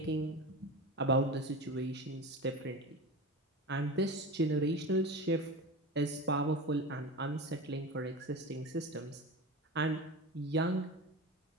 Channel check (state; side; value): normal; both; correlation 0.28